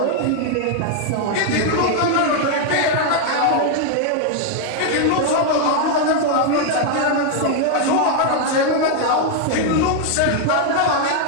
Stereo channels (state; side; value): different; both; correlation 0.00